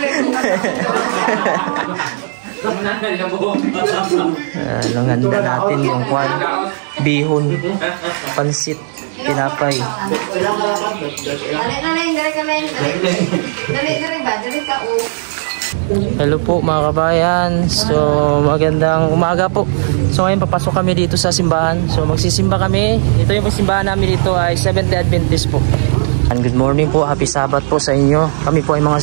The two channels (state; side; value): silent; left; digital silence